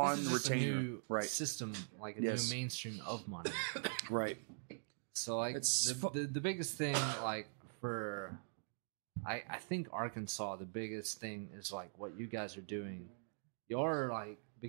this is just a retainer. new Right. system, like a Yes. new mainstream of money. Right. So like It's the biggest thing, like for, I think Arkansas, the biggest thing is like what you guys are doing. You're like,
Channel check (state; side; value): silent; left; digital silence